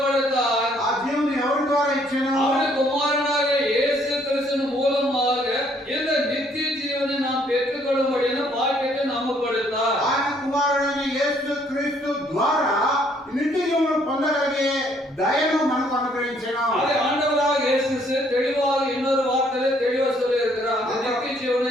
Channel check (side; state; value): both; normal; correlation 0.65